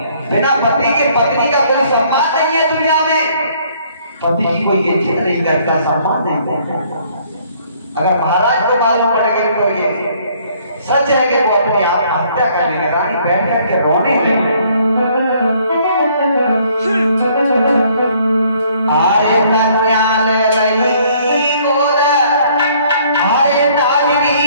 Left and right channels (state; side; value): inverted; both; correlation -0.62